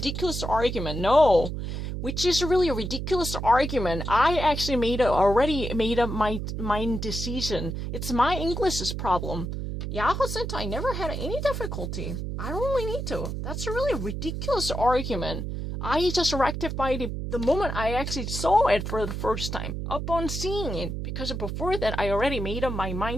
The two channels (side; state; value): right; noise; hum, 4 dB below the sound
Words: argument. No. Which is a really ridiculous argument. I actually already made up my decision. It's my English's problem. Jahrzehnte never had any difficulty. I don't really need to. That's a really ridiculous argument. I just rectified it the moment I actually saw it for the first time. Upon seeing it. Because before that, I already made up my